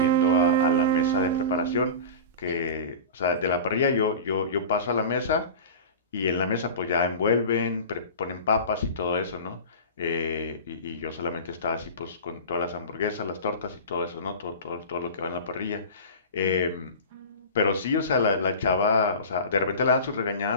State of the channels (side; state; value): both; inverted; correlation -0.32